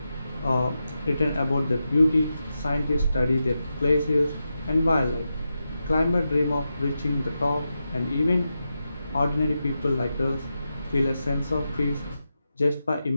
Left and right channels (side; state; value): both; inverted; correlation -0.89